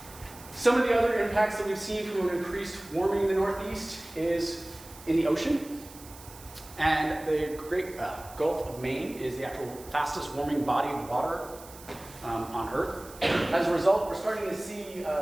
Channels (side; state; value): right; noise; hiss, 19 dB below the sound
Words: Some of the other impacts that we've seen from an increased warming in the Northeast is in the ocean. And the Great Gulf of Maine is the actual fastest warming body of water on Earth. As a result, we're starting to see